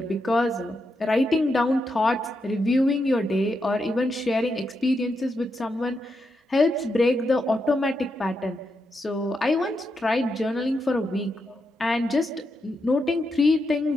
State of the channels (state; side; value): normal; both; correlation 0.84